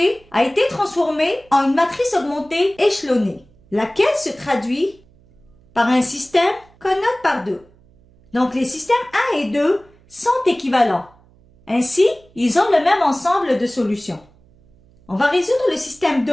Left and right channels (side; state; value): right; noise; hum, 29 dB below the sound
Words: a été transformée en une matrice augmentée échelonnée, laquelle se traduit par un système qu'on note par 2. Donc les systèmes 1 et 2 sont équivalents. Ainsi, ils ont le même ensemble de solutions. On va résoudre le système